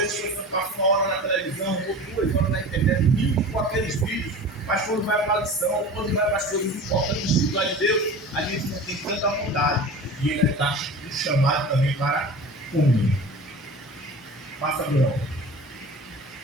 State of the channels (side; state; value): both; normal; correlation 0.36